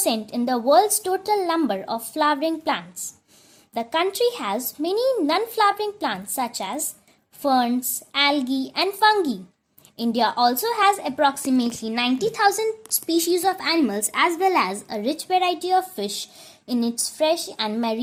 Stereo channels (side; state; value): both; identical; correlation 1.00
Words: in the world's total number of flowering plants. The country has many non-flowering plants such as ferns, algae and fungi. India also has approximately 90,000 species of animals as well as a rich variety of fish in its fresh and